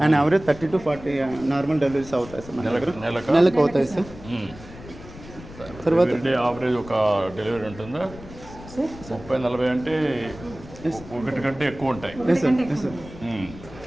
And average 30 to 40 normal deliveries అవుతాయి సార్. నెలకు అవుతాయి సార్. తర్వాత యావరేజ్ ఒక డెలివరీ ఉంటుందా? 30-40 అంటే ఒకటి కంటే ఎక్కువ ఉంటాయి.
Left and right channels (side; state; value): left; noise; rumble, 16 dB below the sound